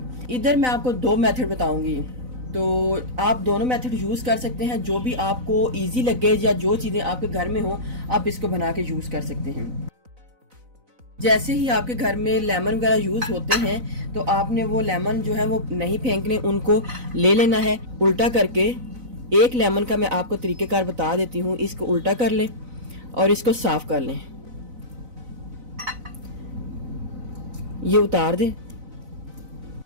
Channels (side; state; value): left; late; 4.0 ms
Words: इधर मैं आपको दो मेथड बताऊंगी, तो आप दोनों मेथड यूज़ कर सकते हैं। जो भी आपको इजी लगे या जो चीज़ें आपके घर में हो, आप इसको बना के यूज़ कर सकते हैं। जैसे ही आपके घर में लेमन वगैरह यूज़ होते हैं, तो आपने वो लेमन जो है वो नहीं फेंकने, उनको ले लेना है उल्टा करके। एक लेमन का मैं आपको तरीक़ेकार बता देती हूँ। इसको उल्टा कर लें और इसको साफ कर लें। ये उतार दें।